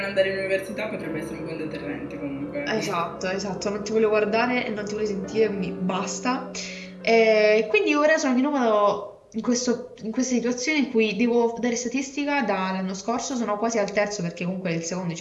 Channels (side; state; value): both; identical; correlation 1.00